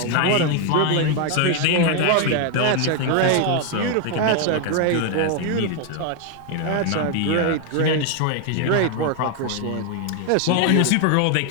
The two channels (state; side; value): different; both; correlation 0.01